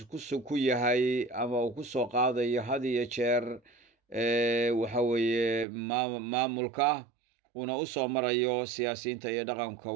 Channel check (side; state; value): left; drops out; at 5.7 s